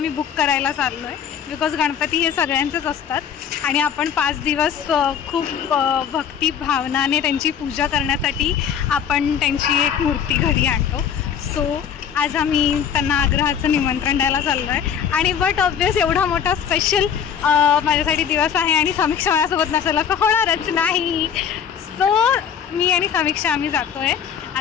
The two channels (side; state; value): right; quieter; 8.1 dB